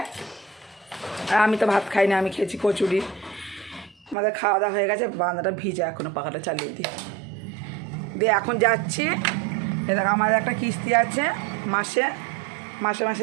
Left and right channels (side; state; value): left; drops out; at 4.2 s